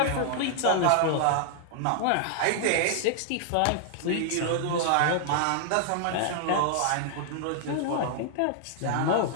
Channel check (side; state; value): both; different; correlation 0.00